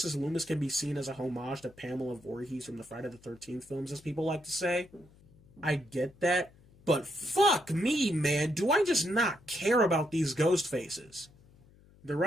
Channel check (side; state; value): left; noise; hum, 27 dB below the sound